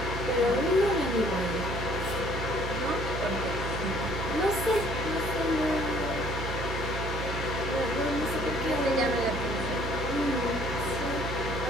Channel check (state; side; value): noise; right; hum, 5 dB below the sound